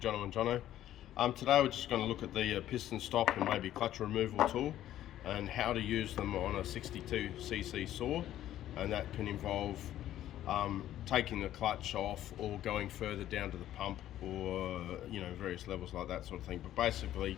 Johno. Today we're just going to look at the piston stop and maybe clutch removal tool and how to use them on a 62cc saw, and that can involve taking the clutch off or going further down to the pump, or various levels like that sort of thing. But basically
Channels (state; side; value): quieter; right; 12.6 dB